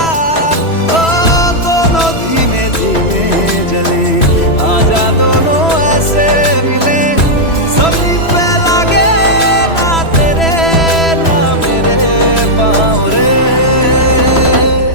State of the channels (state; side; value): late; right; 3.0 ms